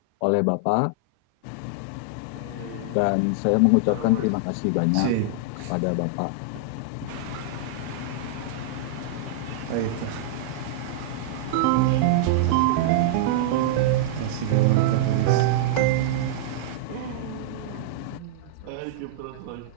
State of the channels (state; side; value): different; both; correlation -0.02